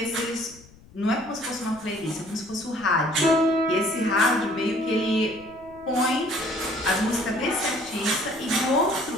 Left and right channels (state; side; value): noise; left; rumble, 24 dB below the sound